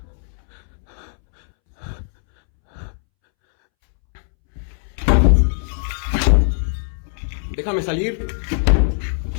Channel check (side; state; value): right; silent; 65 dB below the other